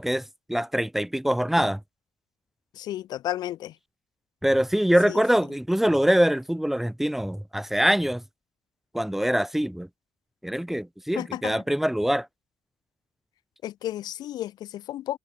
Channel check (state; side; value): normal; both; correlation 0.96